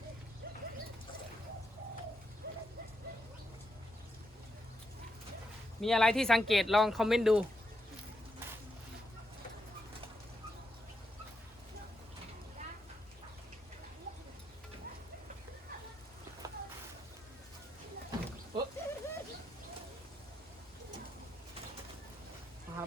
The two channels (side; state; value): both; normal; correlation 0.83